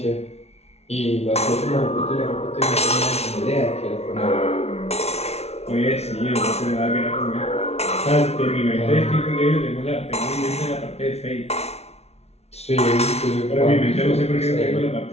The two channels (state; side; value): late; right; 0.31 ms